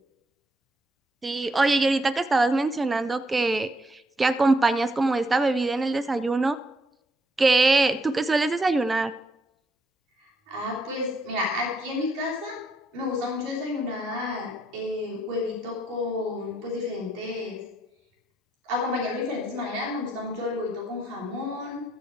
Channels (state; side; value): normal; both; correlation 0.75